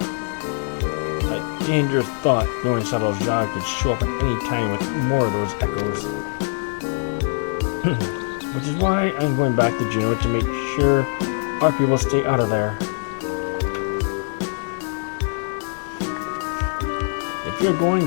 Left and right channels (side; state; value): right; silent; 57 dB below the other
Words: A dangerous thought, knowing Sadal Jah could show up at any time with more of those echoes. Which is why I'm going back to Juneau to make sure our people stay out of there. If you're going,